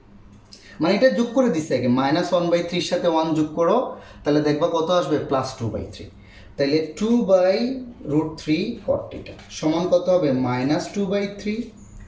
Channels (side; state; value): both; identical; correlation 1.00